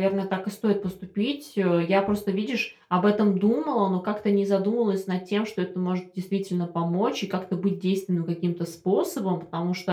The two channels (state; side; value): identical; both; correlation 1.00